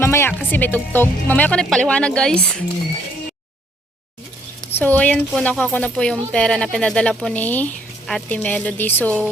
kasi may tugtog. Mamaya ko na paliwanag, guys. So, ayan po, nakuha ko na po yung pera na pinadala po ni Ate Melody.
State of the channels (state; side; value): normal; both; correlation 0.67